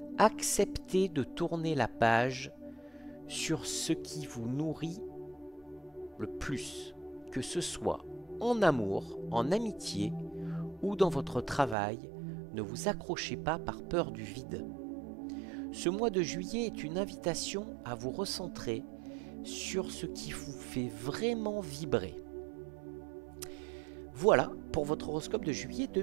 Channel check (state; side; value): drops out; left; at 11.8 s